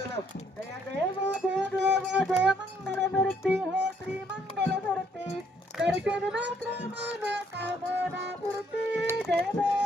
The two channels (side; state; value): both; normal; correlation 0.68